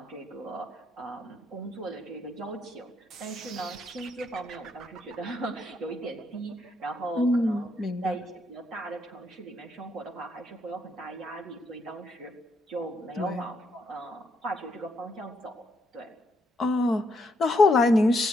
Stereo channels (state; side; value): normal; both; correlation 0.76